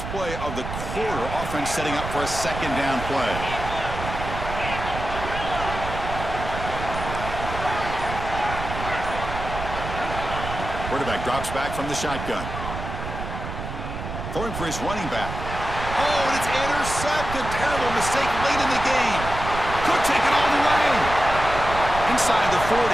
play of the quarter. Offense setting up for a second down play. Quarterback drops back from the shotgun. Throwing for his running back. Oh, and it's intercepted. Terrible mistake late in the game. Could take it all the way. Inside the 40.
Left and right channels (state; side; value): noise; right; rumble, 7 dB below the sound